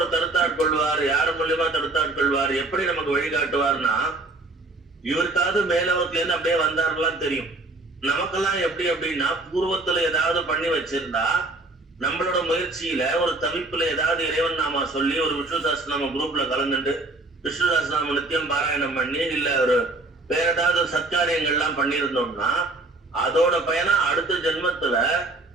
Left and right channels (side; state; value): left; quieter; 3.0 dB